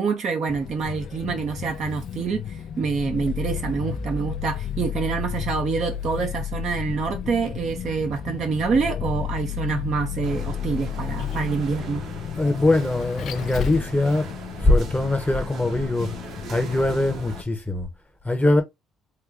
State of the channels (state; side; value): normal; both; correlation 0.76